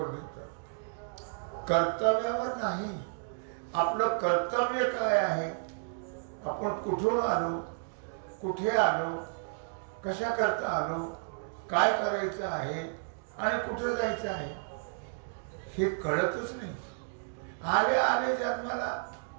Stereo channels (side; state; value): left; silent; digital silence